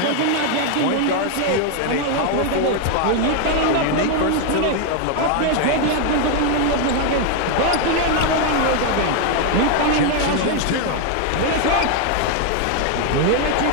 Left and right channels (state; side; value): different; both; correlation 0.01